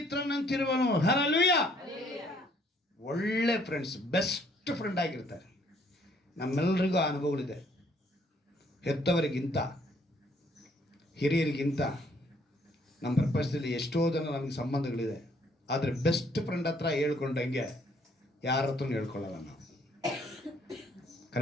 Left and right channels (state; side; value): normal; both; correlation 0.64